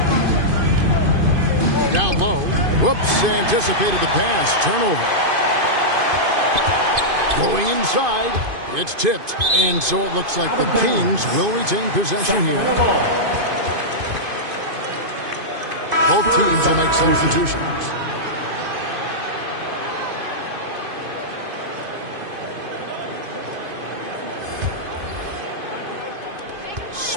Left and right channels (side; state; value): left; late; 2.5 ms